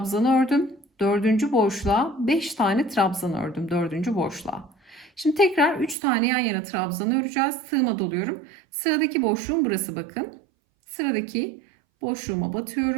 ördüm. Dördüncü boşluğa 5 tane trabzan ördüm. Dördüncü boşluğa. Şimdi tekrar 3 tane yan yana trabzanı öreceğiz. Tığıma doluyorum. Sıradaki boşluğum burası bakın. Sıradaki boşluğuma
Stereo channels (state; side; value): drops out; left; at 6.0 s